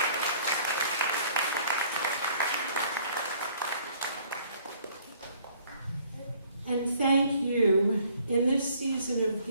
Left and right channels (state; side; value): inverted; both; correlation -0.59